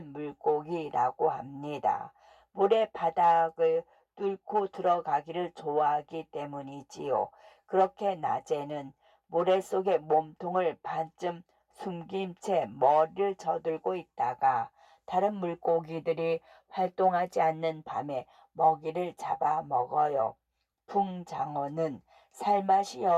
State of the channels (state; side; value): identical; both; correlation 1.00